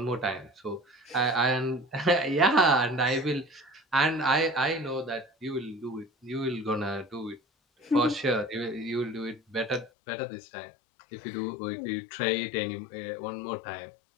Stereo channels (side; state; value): right; drops out; at 9.9 s